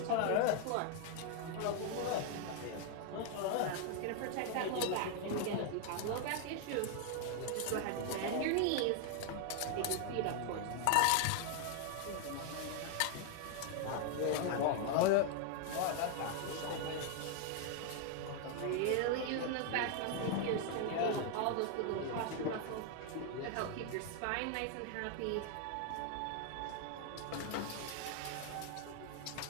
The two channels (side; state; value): both; different; correlation 0.00